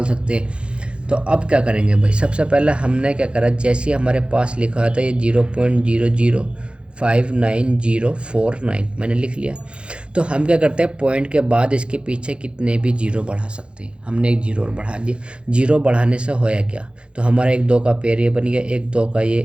सकते। तो अब क्या करेंगे भाई? सबसे पहले हमने क्या करा, जैसे हमारे पास लिखा था ये 0.005949 मैंने लिख लिया। तो हम क्या करते हैं, पॉइंट के बाद इसके पीछे कितने भी जीरो बढ़ा सकते हैं। हमने एक जीरो बढ़ा दिया। जीरो बढ़ाने से होया क्या? तो हमारा 1 2 का पेयर ये बन गया, 1 2 का ये,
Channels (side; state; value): left; late; 0.057 ms